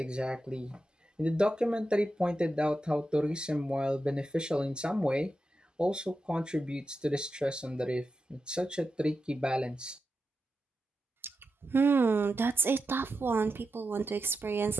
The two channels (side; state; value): both; normal; correlation 0.89